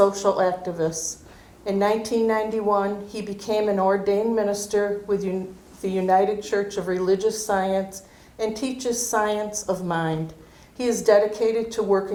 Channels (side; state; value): both; identical; correlation 1.00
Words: activist. In 1991, he became an ordained minister with the United Church of Religious Science and teaches science of mind. He is dedicated to